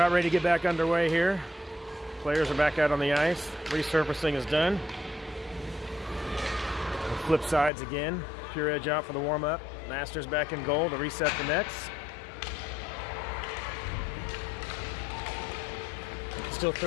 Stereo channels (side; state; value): right; drops out; at 7.7 s